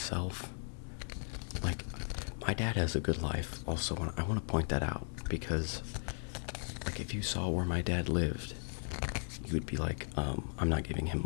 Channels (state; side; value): silent; right; 53 dB below the other